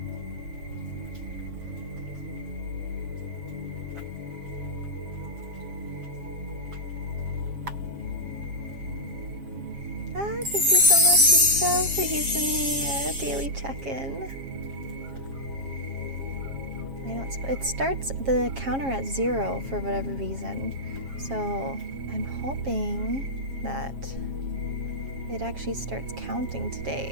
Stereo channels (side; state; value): left; late; 7.4 ms